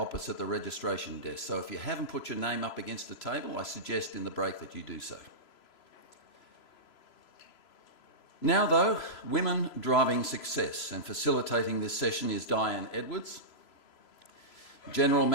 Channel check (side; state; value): right; late; 3.0 ms